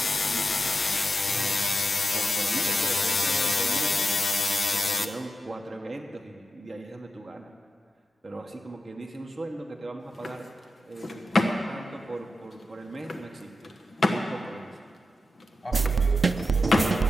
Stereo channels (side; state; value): both; normal; correlation 0.91